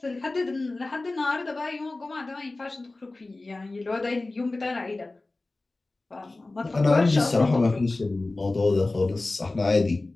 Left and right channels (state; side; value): quieter; right; 3.1 dB